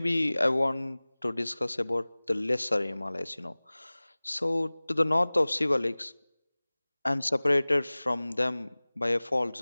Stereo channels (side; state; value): both; inverted; correlation -1.00